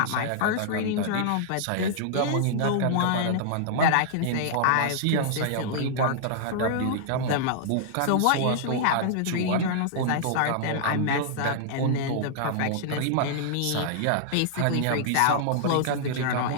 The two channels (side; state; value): both; different; correlation -0.01